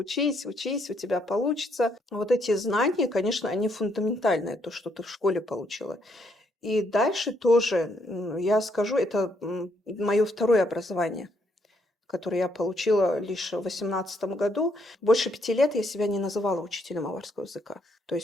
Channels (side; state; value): both; normal; correlation 0.72